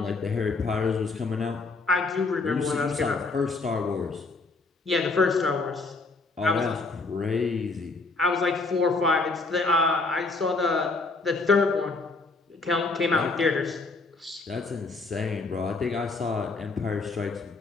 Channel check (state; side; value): quieter; right; 3.7 dB